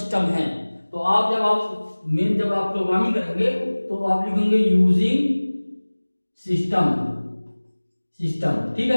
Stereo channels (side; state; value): both; inverted; correlation -1.00